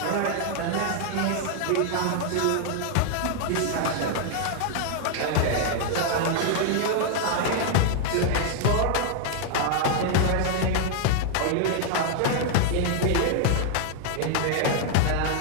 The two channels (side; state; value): both; different; correlation 0.00